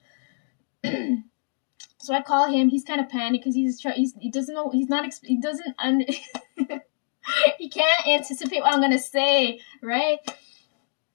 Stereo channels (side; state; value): right; silent; digital silence